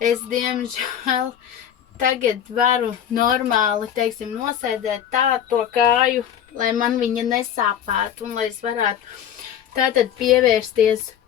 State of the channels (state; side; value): quieter; right; 9.5 dB